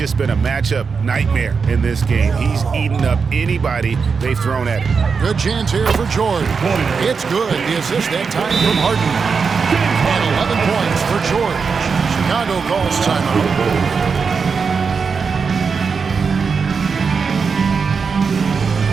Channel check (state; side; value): quieter; left; 5.4 dB